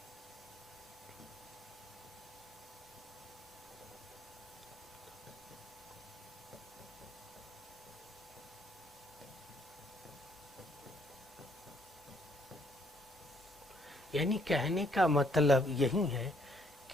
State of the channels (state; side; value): normal; both; correlation 0.67